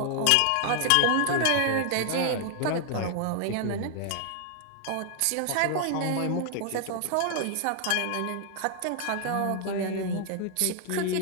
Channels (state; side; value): different; both; correlation 0.00